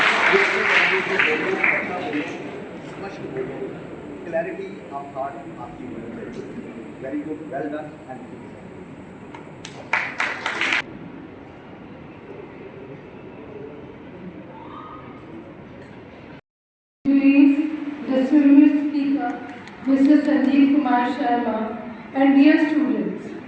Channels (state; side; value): identical; both; correlation 1.00